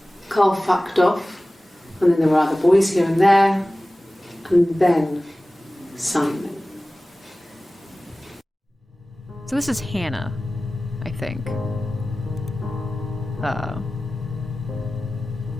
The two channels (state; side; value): normal; both; correlation 0.97